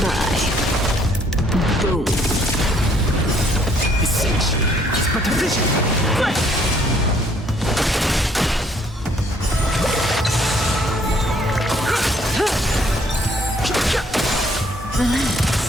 bye. Boom. Essential is but a vision.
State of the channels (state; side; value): normal; both; correlation 0.64